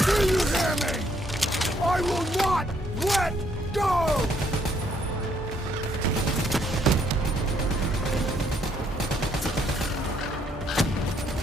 Do you hear me? I will not let go!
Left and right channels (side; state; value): both; normal; correlation 0.69